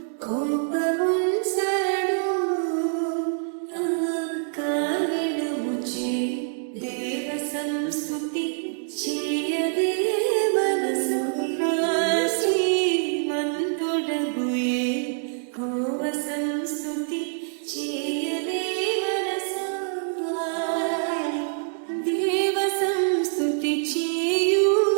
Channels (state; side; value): silent; left; digital silence